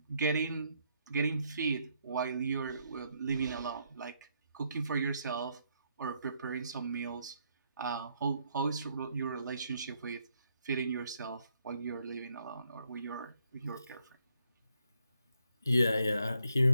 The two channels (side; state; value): both; inverted; correlation -0.74